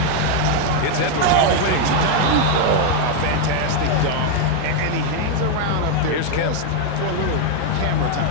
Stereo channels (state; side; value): different; both; correlation 0.01